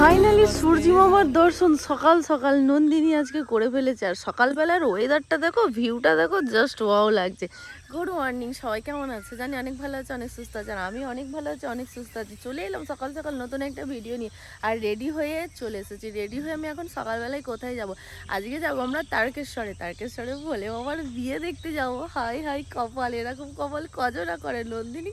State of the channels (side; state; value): both; identical; correlation 1.00